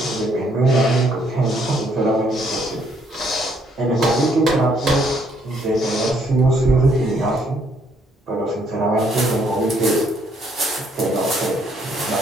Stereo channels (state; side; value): normal; both; correlation 0.68